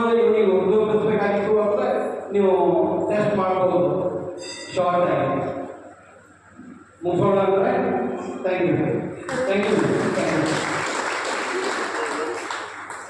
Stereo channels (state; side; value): identical; both; correlation 1.00